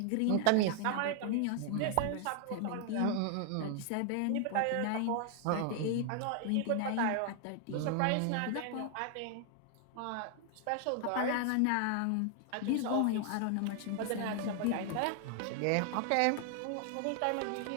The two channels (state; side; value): different; both; correlation 0.00